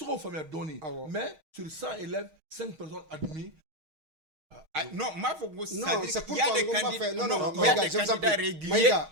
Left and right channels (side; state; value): left; late; 6.4 ms